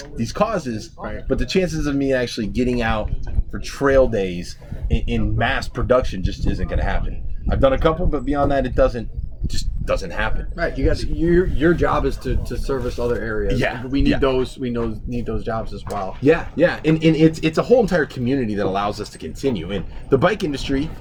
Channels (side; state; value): both; identical; correlation 1.00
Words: causes, Right. but the chances of me actually getting out for trail days in mass production just isn't going to happen. I've done a couple, but beyond that, it doesn't just doesn't happen. Right, you got your job is to service other areas. Yeah, we need yeah. those. We need those jobs as well. Yeah, and it's a whole entire community that allows us to continue. And the bike industry,